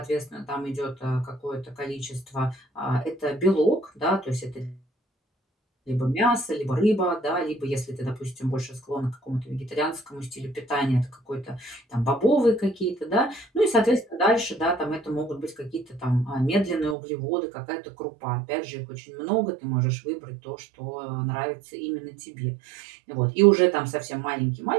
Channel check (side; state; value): left; drops out; at 16.9 s